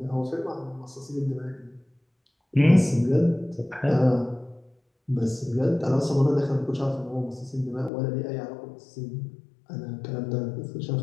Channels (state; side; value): drops out; right; at 7.9 s